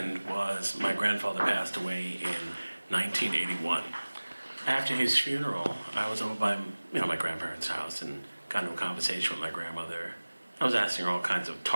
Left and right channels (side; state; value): both; inverted; correlation -1.00